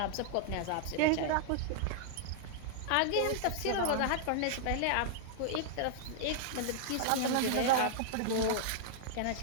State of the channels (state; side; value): different; both; correlation -0.01